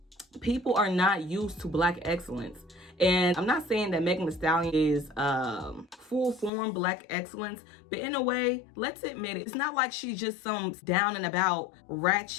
people are not used to black excellence. And I'm not saying that Megan Thee Stallion is full form black excellence, but in a way, let's admit it, it's not like she's just some down and about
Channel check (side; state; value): right; drops out; at 6.5 s